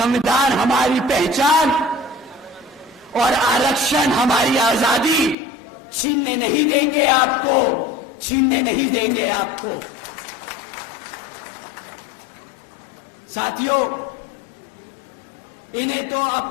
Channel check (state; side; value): drops out; right; at 5.4 s